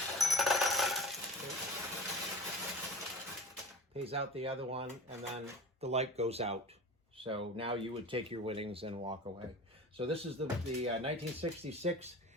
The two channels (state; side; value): normal; both; correlation 0.36